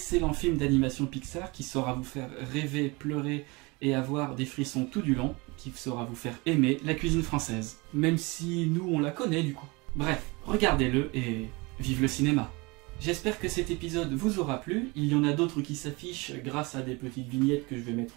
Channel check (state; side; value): quieter; left; 26.0 dB